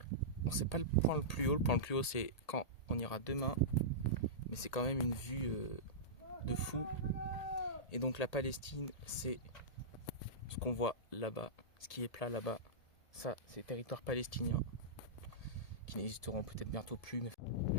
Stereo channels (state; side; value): late; right; 1.8 ms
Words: bon, c'est pas le point le plus haut c'est quand on ira demain, mais c'est quand même une vue de fou. Et donc la Palestine, c'est ce qu'on voit là-bas, ce qui est plat là-bas, ça c'est territoire palestinien, qui n'existeront peut-être bientôt plus, mais